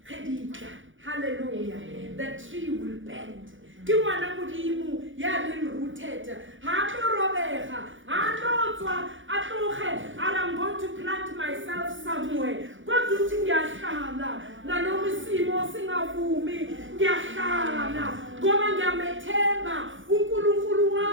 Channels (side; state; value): left; late; 0.56 ms